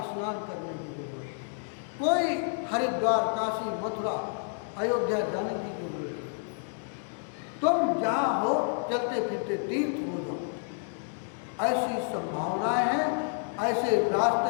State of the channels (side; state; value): right; silent; 56 dB below the other